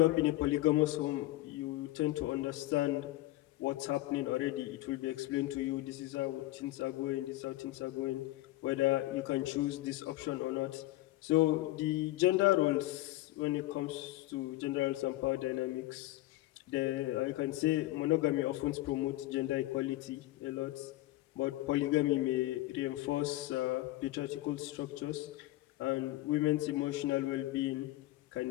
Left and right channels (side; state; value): right; quieter; 17.3 dB